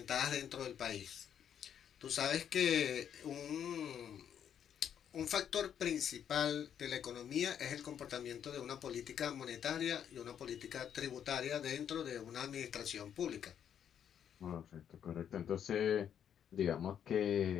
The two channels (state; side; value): quieter; right; 8.9 dB